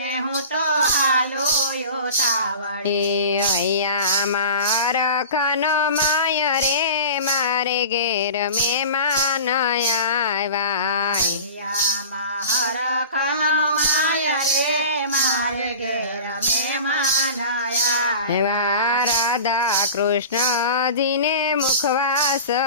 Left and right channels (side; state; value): both; inverted; correlation -0.36